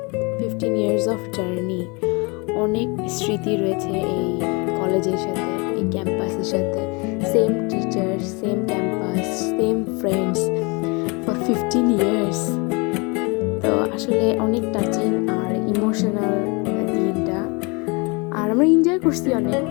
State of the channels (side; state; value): right; quieter; 29.5 dB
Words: অফ জার্নি, অনেক স্মৃতি রয়েছে এই কলেজের সাথে, এই ক্যাম্পাসের সাথে। Same teacher, same campus, same friends for 15 years. তো আসলে অনেক টাচিং আর ইমোশনাল দিনটা, আর আমরা এনজয় করছি অনেক।